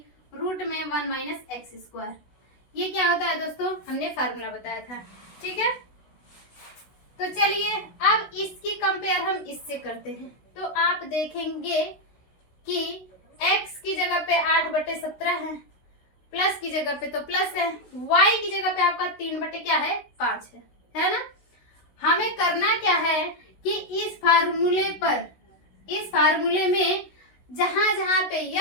रूट में 1 माइनस एक्स स्क्वायर। ये क्या होता है दोस्तों, हमने फार्मूला बताया था। ठीक है, तो चलिए अब इसकी कंपेयर हम इससे करते हैं। तो आप देखेंगे कि x की जगह पे 8/17 है, प्लस की जगह पे तो प्लस है, y की जगह पे आपका 3 क्या है 5 है ना। हमें करना क्या है कि इस फार्मूले पर, इस फार्मूले में जहां जहां पे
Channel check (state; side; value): late; right; 16 ms